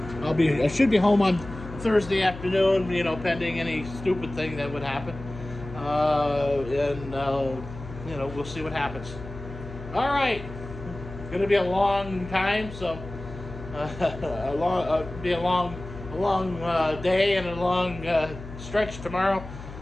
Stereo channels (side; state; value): left; noise; hum, 13 dB below the sound